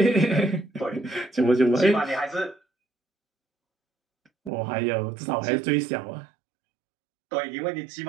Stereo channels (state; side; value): drops out; left; at 4.5 s